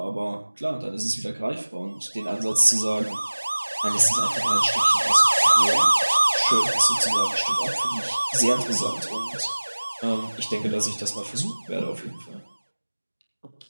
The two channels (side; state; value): both; inverted; correlation -1.00